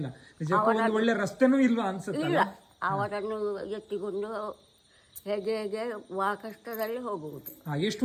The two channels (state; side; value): identical; both; correlation 1.00